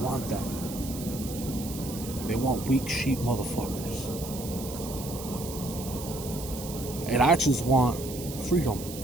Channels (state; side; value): noise; right; hiss, 11 dB below the sound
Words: want that. They want weak sheep motherfuckers. And I just want freedom.